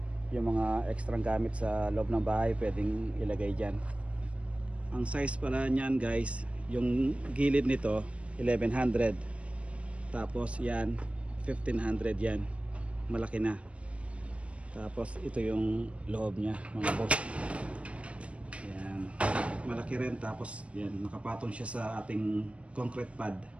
yung mga extra gamit sa loob ng bahay pwedeng ilagay dyan. Ang size pala niyan guys, yung gilid nito 1100, tapos yan 1500, yan malaki na. Tapos ito yung loob niya mga boss. Yan, malaki rin, tapos yan, nakapatong siya sa ating concrete pad.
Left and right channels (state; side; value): late; left; 0.062 ms